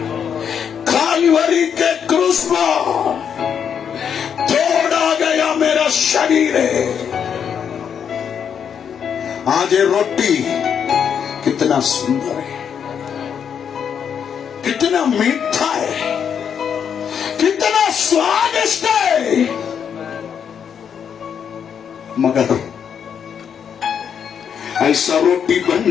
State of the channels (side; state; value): right; quieter; 7.7 dB